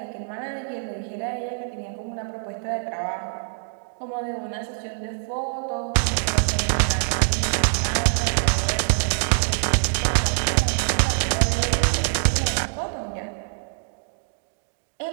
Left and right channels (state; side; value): silent; left; digital silence